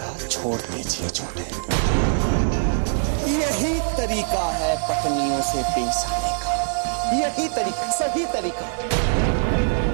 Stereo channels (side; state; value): left; silent; 57 dB below the other